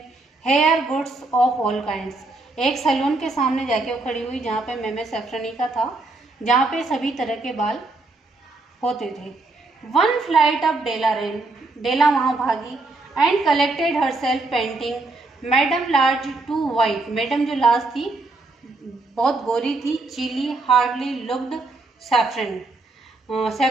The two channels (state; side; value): quieter; left; 3.2 dB